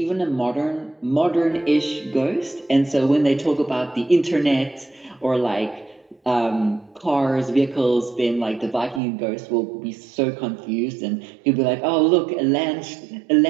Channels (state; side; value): drops out; left; at 9.0 s